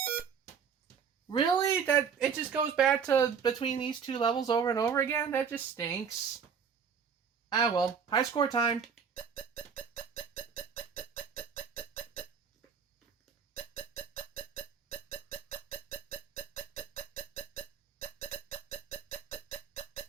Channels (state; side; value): quieter; left; 6.7 dB